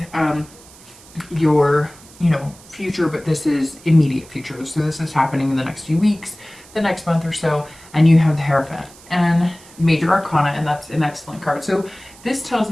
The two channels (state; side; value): noise; right; hiss, 22 dB below the sound